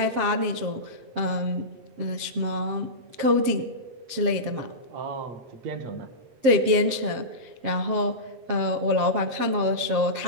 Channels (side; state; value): left; late; 7.6 ms